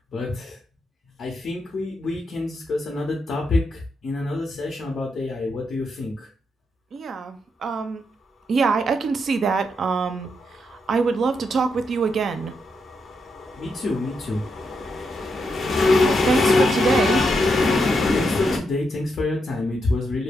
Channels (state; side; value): normal; both; correlation 0.82